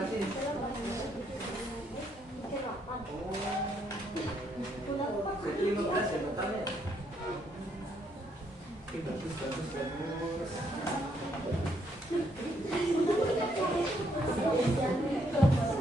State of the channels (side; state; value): both; normal; correlation 0.73